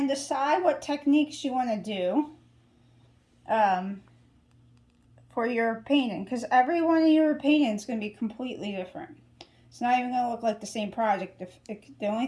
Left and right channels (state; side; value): identical; both; correlation 1.00